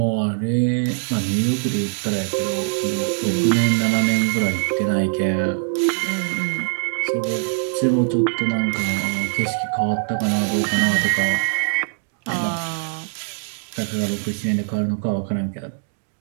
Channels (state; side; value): silent; left; digital silence